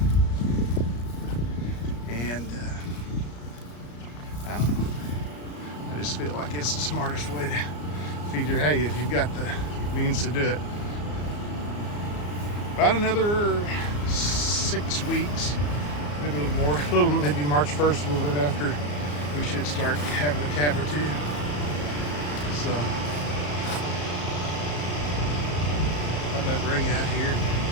And I don't know. I just feel like it's the smartest way to feed your hay if you've got the means to do it. About another 6 weeks, maybe a little more, maybe March 1st, a little bit after, we should start having a calf or two. So, thought I'd bring you out here and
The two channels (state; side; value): late; right; 34 ms